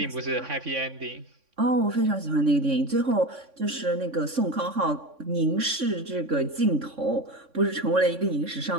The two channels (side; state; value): left; late; 3.6 ms